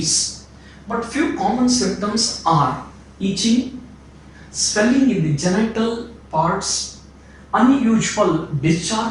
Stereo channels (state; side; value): identical; both; correlation 1.00